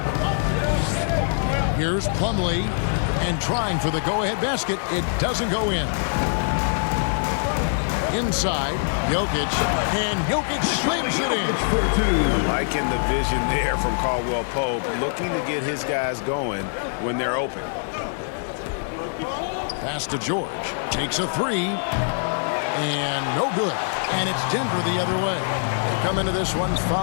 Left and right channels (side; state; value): right; silent; digital silence